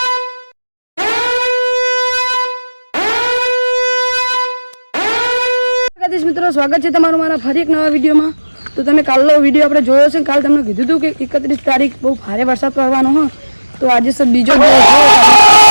મિત્રો સ્વાગત છે તમારું મારા ફરી એક નવા વિડીયોમાં. તો તમે કાલનો વિડીયો આપણે જોયો છે. કાલ તમને કીધું હતું કે 31 તારીખ બહુ ભારે વરસાદ પડવાનો હોય. તો આજે સર બીજો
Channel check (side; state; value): both; inverted; correlation -1.00